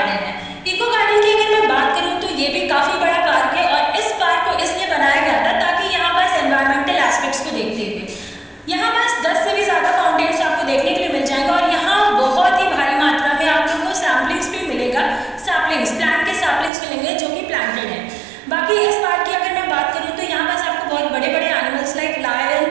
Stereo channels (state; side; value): drops out; left; at 16.7 s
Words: है। इको गार्डन की अगर मैं बात करूँ तो ये भी काफ़ी बड़ा पार्क है और इस पार्क को इसलिए बनाया गया था ताकि यहाँ पास एनवायरमेंटल एस्पेक्ट्स को देखते हुए यहाँ पास 10 से भी ज़्यादा फाउंटेन्स आपको देखने के लिए मिल जाएगा और यहाँ बहुत ही भारी मात्रा में आप लोगों को सैम्पलिंग्स भी मिलेगा। प्लांट के सैम्पलिंग्स मिलेंगे जो कि प्लांटेड है। बाकी इस पार्क की अगर मैं बात करूँ तो यहाँ पास आपको बहुत बड़े बड़े animals like lion,